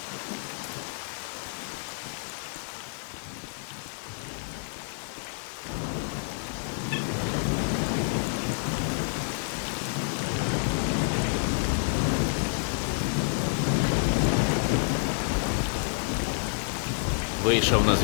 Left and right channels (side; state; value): right; silent; 59 dB below the other